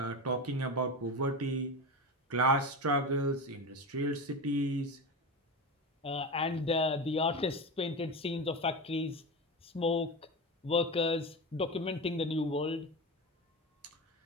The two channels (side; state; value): both; normal; correlation 0.23